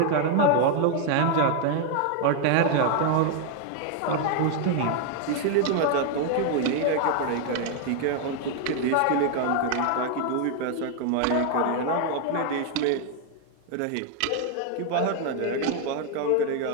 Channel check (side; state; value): both; different; correlation 0.00